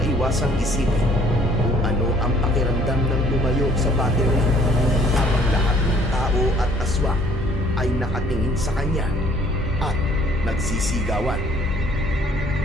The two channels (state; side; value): normal; both; correlation 0.59